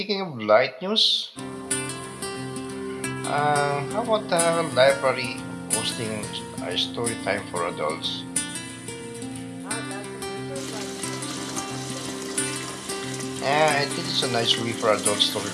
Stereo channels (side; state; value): both; identical; correlation 1.00